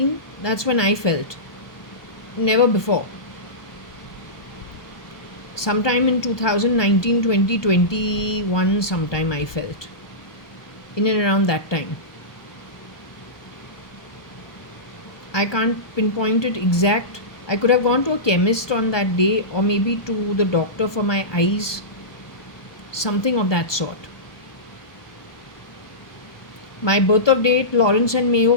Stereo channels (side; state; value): right; late; 1.2 ms